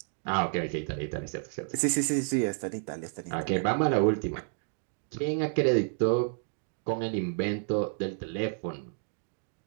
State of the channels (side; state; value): left; silent; 58 dB below the other